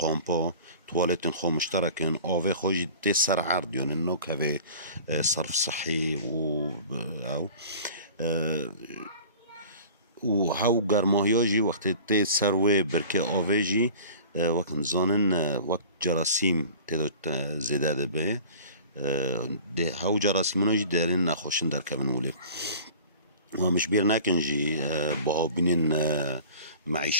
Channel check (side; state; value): both; inverted; correlation -0.42